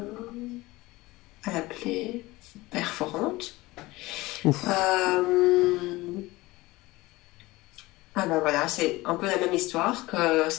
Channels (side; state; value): right; quieter; 20.1 dB